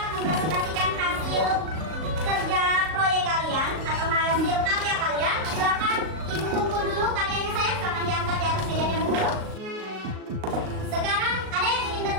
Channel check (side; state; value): left; late; 38 ms